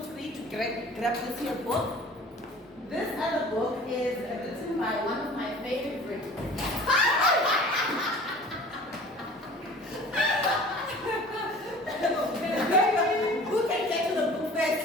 free to grab this here book. This other book is written by one of my favorites. Who can get to the book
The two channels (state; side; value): normal; both; correlation 0.45